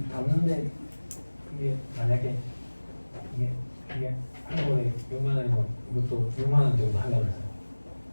담는데 이게 만약에 이게 한 번에 6만 원이면 이것도 6만 원 정도 하려면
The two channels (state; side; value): inverted; both; correlation -1.00